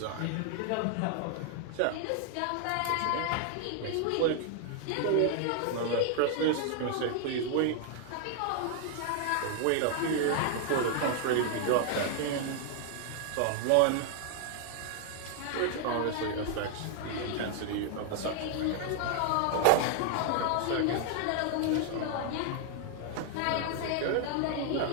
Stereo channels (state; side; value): different; both; correlation 0.00